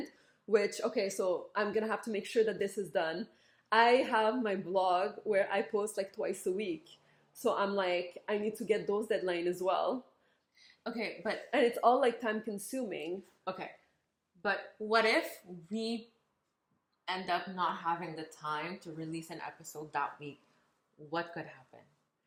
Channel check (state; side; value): identical; both; correlation 1.00